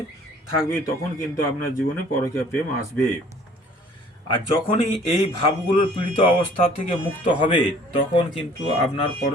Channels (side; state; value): both; normal; correlation 0.53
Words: থাকবে তখন কিন্তু আপনার জীবনে পরকীয়া প্রেম আসবে। আর যখনই এই ভাবগুলোর পীড়িত অবস্থা থেকে মুক্ত হবে তখন কিন্তু আপনার